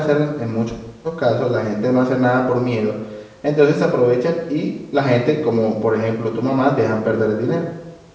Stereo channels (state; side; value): identical; both; correlation 1.00